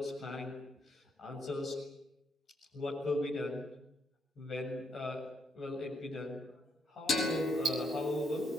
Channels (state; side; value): normal; both; correlation 0.76